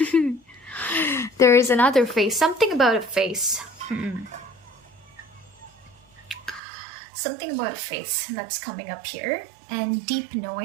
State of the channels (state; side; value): drops out; left; at 6.6 s